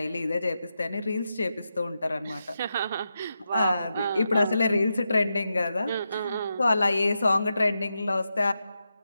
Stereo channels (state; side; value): inverted; both; correlation -0.87